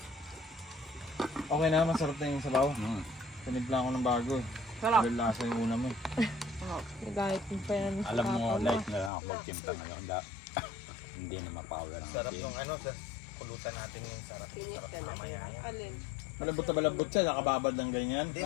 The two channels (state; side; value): drops out; right; at 9.1 s